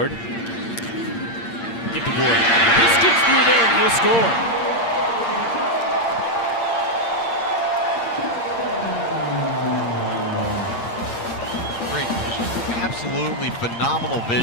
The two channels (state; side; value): late; right; 8.7 ms